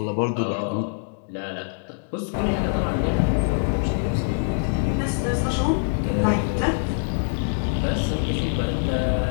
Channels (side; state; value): right; silent; digital silence